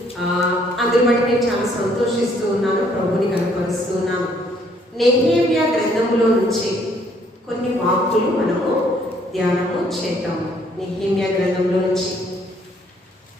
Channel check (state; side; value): normal; both; correlation 0.65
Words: అందుని బట్టి నేను చాలా సంతోషిస్తూ ఉన్నాను, ప్రభుని కనపరుస్తూ ఉన్నాను. నెహెమ్యా గ్రంథంలో నుంచి కొన్ని వాక్కులు మనము ధ్యానము చేద్దాము. నెహెమ్యా గ్రంథంలో నుంచి.